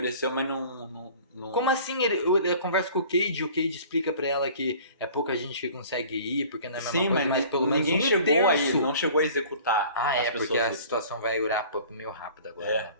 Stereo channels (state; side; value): inverted; both; correlation -0.47